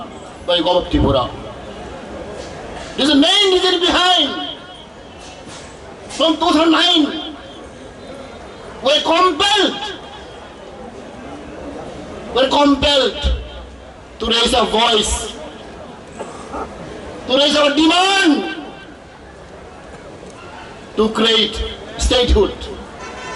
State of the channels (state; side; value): identical; both; correlation 1.00